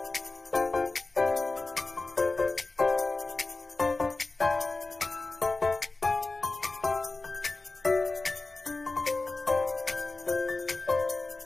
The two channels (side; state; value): right; quieter; 3.4 dB